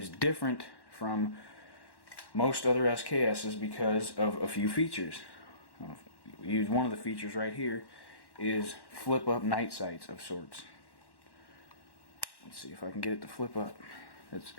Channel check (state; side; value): late; right; 1.1 ms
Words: different from most other SKSs because of a few features. One of the features right here is flip up night sights of sorts. Let's see if I can get it to flip up.